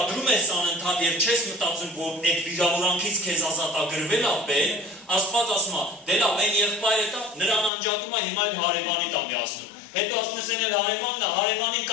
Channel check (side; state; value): right; drops out; at 7.7 s